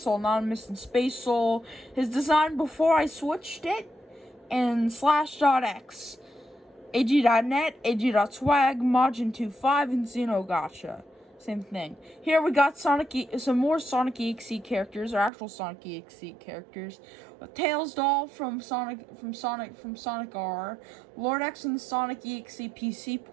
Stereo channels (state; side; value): drops out; left; at 15.3 s